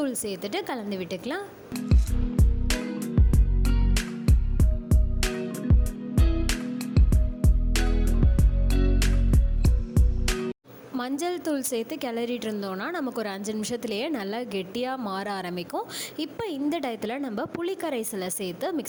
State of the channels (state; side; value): identical; both; correlation 1.00